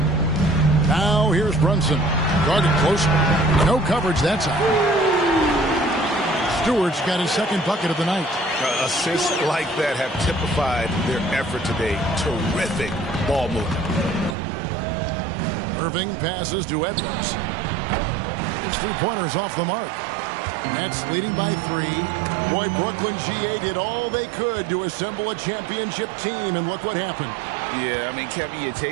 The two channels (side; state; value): left; drops out; at 14.4 s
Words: Now here's Brunson. Guarded closer. No coverage that side. Stewart's got his second bucket of the night. Assists like that have typified their effort today. Terrific ball movement. Irving passes to Edwards. His three-pointers off the mark. Nets leading by 3. Boy, Brooklyn GA did all they could to assemble a championship team, and look what happened. Yeah, I mean, Kevin, you